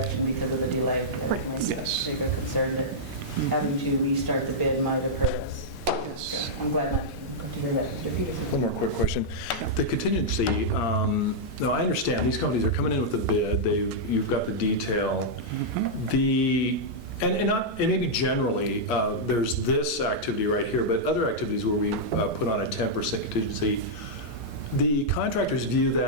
because of the delay. Right. Yes. Bigger concern that having to restart the bid might have hurt us. Yes. I'm glad not to hear that, Mr. Peterson. One more quick question. The contingency, now I understand, these companies are coming in with a bid, you've got the detail. And maybe generally, there's this activity right here, but other activities where we put on a 10% contingency, the contractors view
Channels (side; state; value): both; normal; correlation -0.08